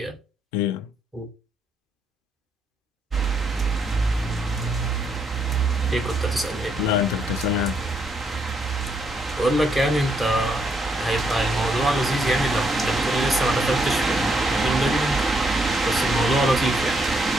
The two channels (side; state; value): both; normal; correlation 0.74